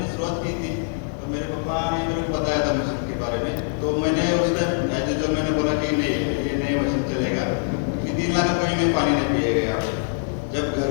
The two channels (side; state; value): right; silent; 60 dB below the other